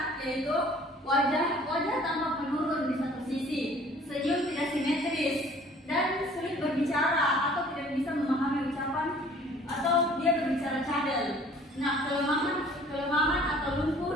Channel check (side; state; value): both; normal; correlation 0.53